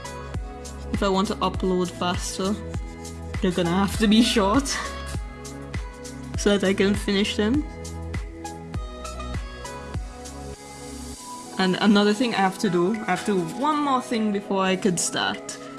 If I want to upload faster, they're gonna have to be short so that I can finish them. And another thing I have to do one more thing before I could start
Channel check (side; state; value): both; identical; correlation 1.00